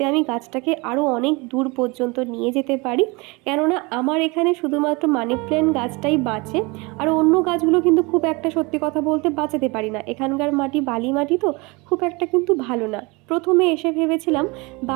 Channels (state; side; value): quieter; left; 26.5 dB